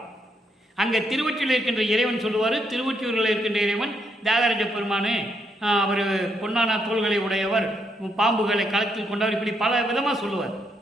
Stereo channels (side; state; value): both; normal; correlation 0.77